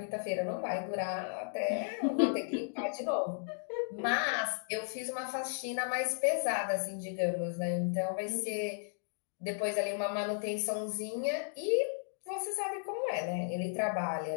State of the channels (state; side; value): silent; right; digital silence